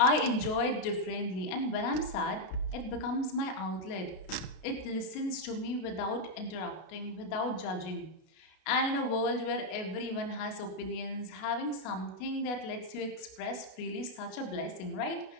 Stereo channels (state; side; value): late; right; 33 ms